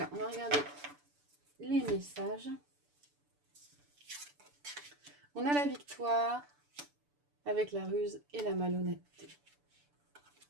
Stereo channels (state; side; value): late; left; 6.9 ms